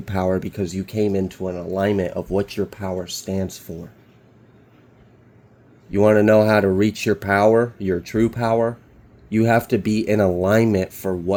power because you came into an alignment of what your power stands for. You want to know how to reach your power, your true power? You have to be in alignment for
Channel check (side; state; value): both; identical; correlation 1.00